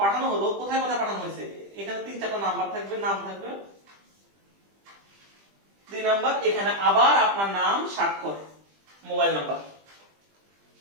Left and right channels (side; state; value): left; late; 20 ms